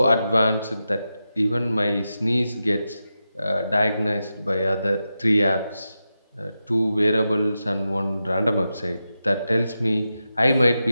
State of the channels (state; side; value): inverted; both; correlation -0.90